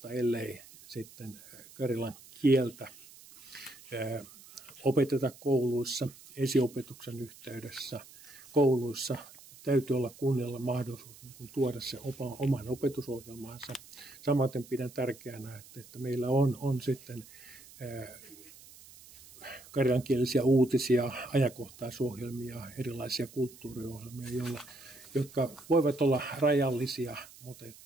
ellei sitten karjalan kieltä opeteta kouluissa, esiopetuksen yhteydessä, kouluissa. Täytyy olla kunnilla mahdollisuus tuoda se oman opetusohjelmaansa. Samaten pidän tärkeänä, että meillä on sitten karjalankielisiä uutisia, ajankohtaisohjelmia, erilaisia kulttuuriohjelmia, jotka voivat olla rajallisia, mutta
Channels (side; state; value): right; noise; hiss, 20 dB below the sound